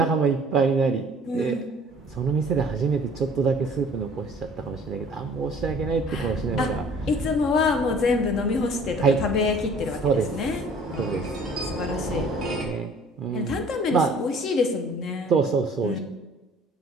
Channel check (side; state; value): both; normal; correlation 0.52